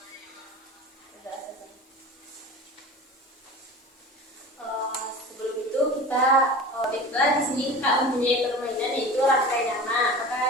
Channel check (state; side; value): normal; both; correlation 0.35